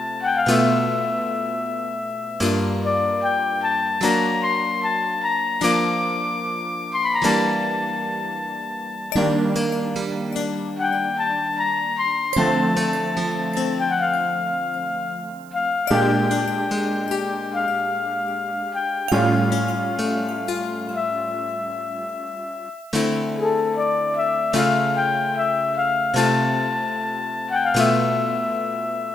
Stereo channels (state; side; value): noise; right; hiss, 26 dB below the sound